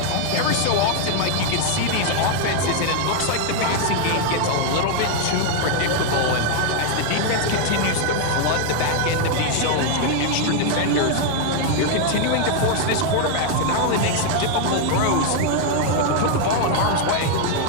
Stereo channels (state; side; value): different; both; correlation 0.00